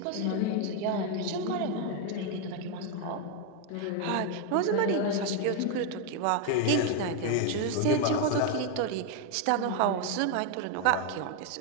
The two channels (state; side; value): different; both; correlation 0.01